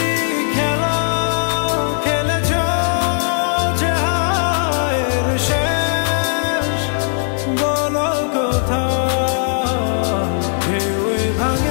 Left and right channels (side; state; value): right; silent; digital silence